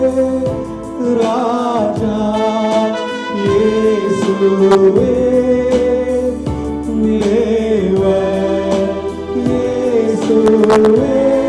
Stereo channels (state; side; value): identical; both; correlation 1.00